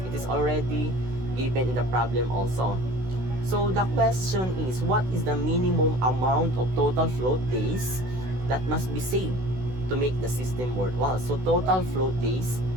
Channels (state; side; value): late; left; 16 ms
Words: It is already given in the problem also. So the question is, what is the minimum amount of total float days that must be saved to make the system worthwhile? So total float days,